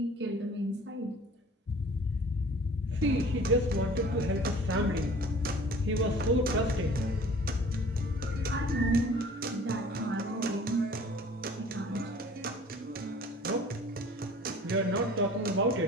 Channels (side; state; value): both; normal; correlation 0.48